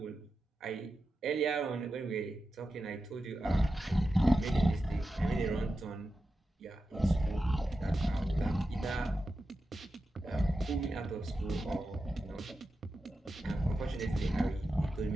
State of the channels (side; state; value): both; normal; correlation 0.91